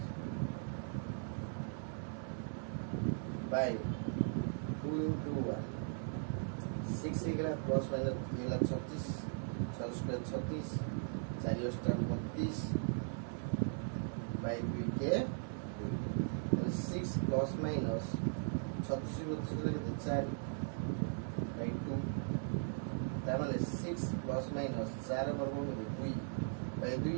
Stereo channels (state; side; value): silent; left; digital silence